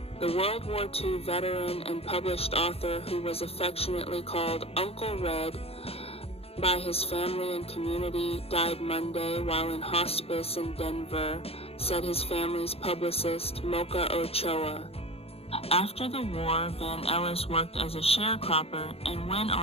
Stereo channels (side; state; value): right; late; 0.29 ms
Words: The World War II veteran and published author, who was affectionately called Uncle Red by his family and community, died Monday while in hospice in Denver, said his family's publicist, Mocha Ochoa. After the war, Van Ellis worked as a sharecropper and went